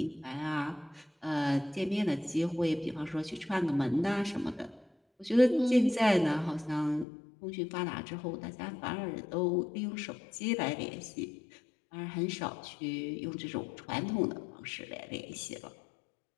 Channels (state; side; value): drops out; right; at 7.1 s